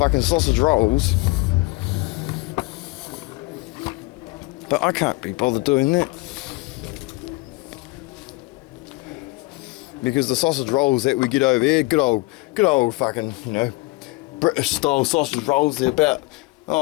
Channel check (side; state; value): right; quieter; 23.3 dB